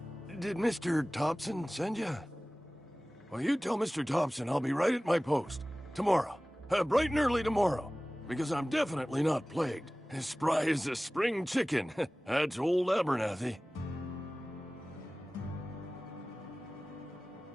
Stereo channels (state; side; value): normal; both; correlation 0.98